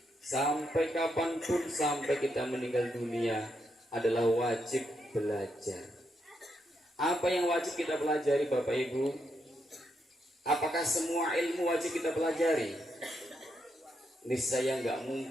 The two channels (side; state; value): both; normal; correlation 0.80